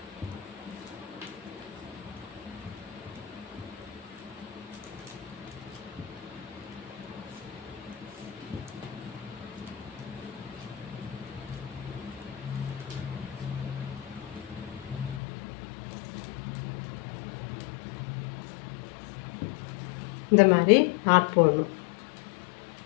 இந்த மாதிரி நாட் போடணும்.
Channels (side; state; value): right; drops out; at 15.2 s